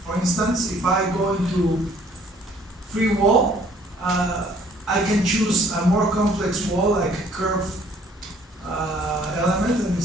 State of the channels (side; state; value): both; normal; correlation 0.59